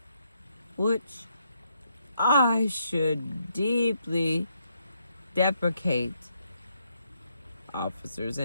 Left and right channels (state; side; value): inverted; both; correlation -0.77